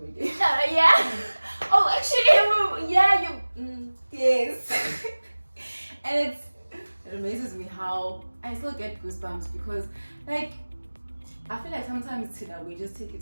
again. yeah. Oh, actually, yeah, you. Yes. And it amazes me how I still get goosebumps because, like, I feel like sometimes we just take it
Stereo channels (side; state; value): both; inverted; correlation -1.00